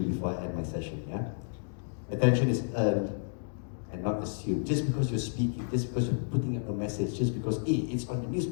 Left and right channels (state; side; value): silent; right; digital silence